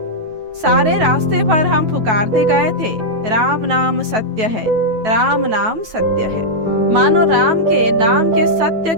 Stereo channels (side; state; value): left; late; 9.2 ms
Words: सारे रास्ते पर हम पुकारते गए थे, राम नाम सत्य है, राम नाम सत्य है। मानो राम के नाम के सत्य